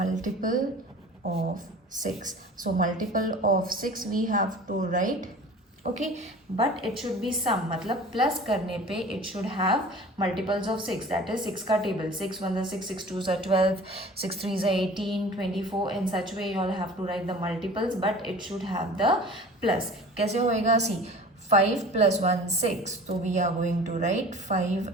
of 6. So multiple of 6 we have to write. Okay, but it should be sum, मतलब plus करने पे it should have multiples of 6, that is 6 का table. 6 1 is 6, 6 2 is 12, 6 3 is 18, 24. In such way you all have to write the multiples, but it should have the plus. कैसे होएगा? See, 5 plus 1 6, so we are going to write 5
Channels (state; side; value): normal; both; correlation 0.42